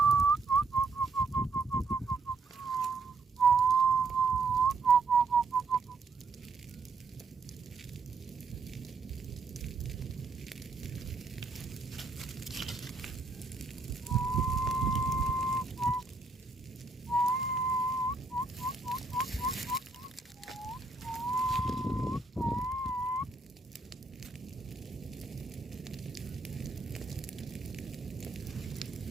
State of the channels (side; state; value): left; quieter; 3.9 dB